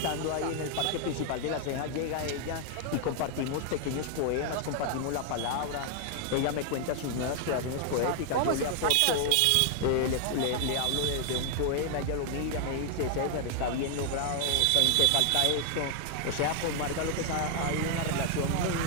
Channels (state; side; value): different; both; correlation 0.00